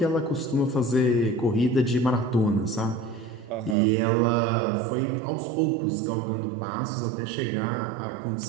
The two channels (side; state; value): left; drops out; at 3.8 s